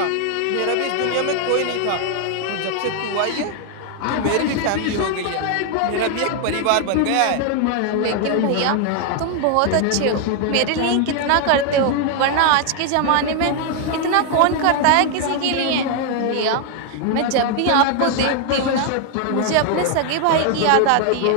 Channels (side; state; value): both; different; correlation 0.00